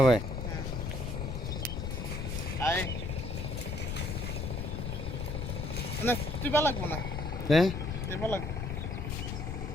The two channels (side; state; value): left; noise; rumble, 4 dB below the sound